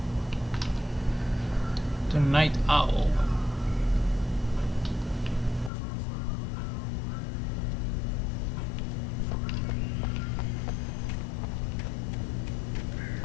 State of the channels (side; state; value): right; drops out; at 5.7 s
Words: The Night Owl.